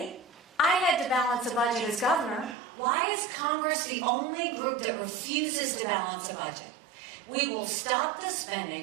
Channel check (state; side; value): drops out; left; at 2.6 s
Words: I had to balance a budget as governor. Why is Congress the only group that refuses to balance a budget? We will stop the spending,